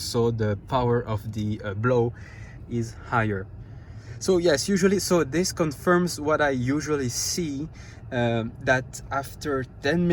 the power of the blow is higher. So yes, usually, so this confirms what I usually see, that after 10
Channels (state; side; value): identical; both; correlation 1.00